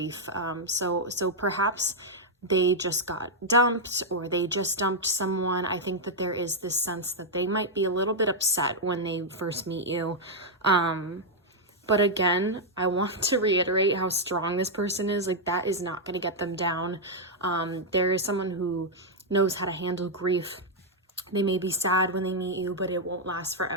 So perhaps they just got dumped, or they just dumped someone. I think that there is this sense that they might be a little bit upset when they first meet you. But again, I want to reiterate how strong this person is. Like, that is not going to get them down. There is someone who knows how to handle grief. They may be sad when they meet you, but it won't last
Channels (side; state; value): both; normal; correlation -0.03